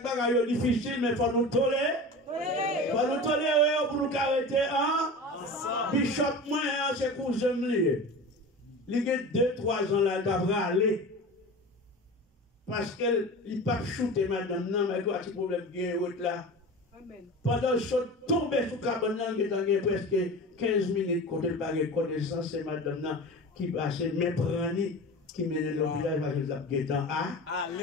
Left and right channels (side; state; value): both; normal; correlation 0.33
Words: bagages difficiles, mais il faut nous tolérer. Il faut nous tolérer pour nous arrêter. Bishop, moi, c'est pour j'aime. Il y a 2-3 ans là, il devrait aller. Parce qu'il n'a pas shooté madame, non, mais il y a un petit problème bien là. Pendant que je suis tombé sur le cabane, il y a presque 15 minutes quand il a connaissance, c'est madame qui va se méprendre. Qui mène dans le village parce que ça est en A.